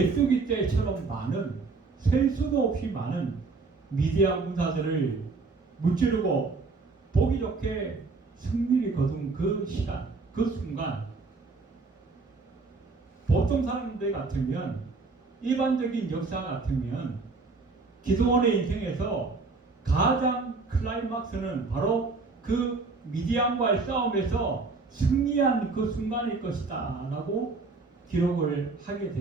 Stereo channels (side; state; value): left; quieter; 4.0 dB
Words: 떼처럼 많은 셀 수도 없이 많은 미디안 군사들을 무찌르고 보기 좋게 승리를 거둔 그 시간, 그 순간 보통 사람들 같으면 일반적인 역사 같으면 기도원의 인생에서 가장 클라이막스는 바로 그 미디안과의 싸움에서 승리한 그 순간일 것이다 라고 기록을 하게